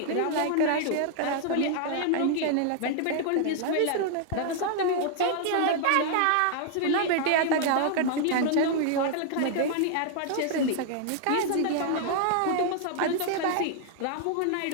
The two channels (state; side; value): different; both; correlation 0.00